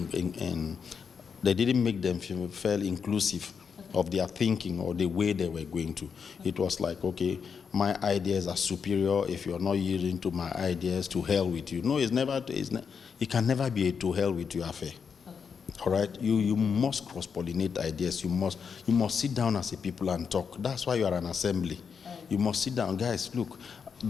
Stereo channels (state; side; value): quieter; right; 6.3 dB